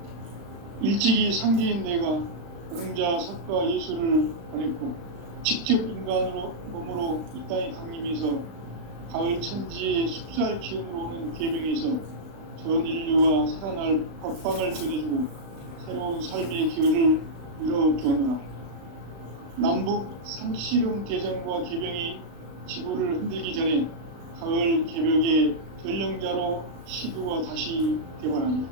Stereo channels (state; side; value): late; left; 35 ms